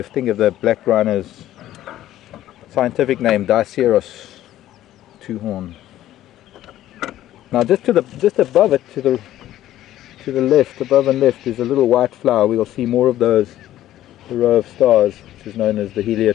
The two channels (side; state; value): right; quieter; 13.1 dB